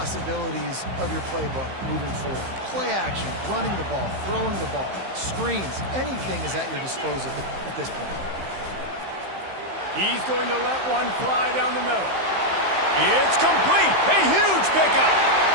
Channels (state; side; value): late; left; 15 ms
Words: of your playbook moving forward. Play action, running the ball, throwing the ball, screens, anything is at your disposal at this point. He's going to let one fly down the middle. It's complete. A huge pickup.